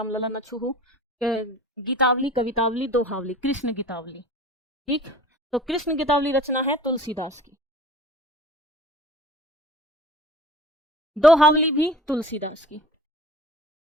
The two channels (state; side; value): normal; both; correlation 0.43